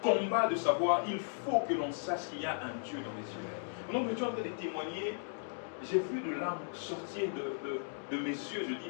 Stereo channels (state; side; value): silent; right; digital silence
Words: combats de savoir, il faut que l'on sache qu'il y a un Dieu dans les cieux. Donc, je suis en train de témoigner, j'ai vu de larmes sortir de mes yeux. Je